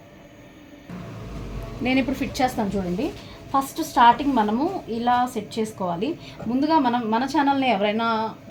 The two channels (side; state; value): both; identical; correlation 1.00